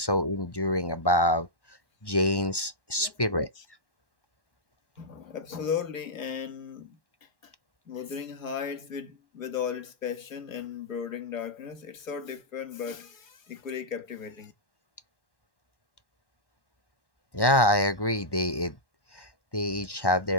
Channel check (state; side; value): late; right; 1.1 ms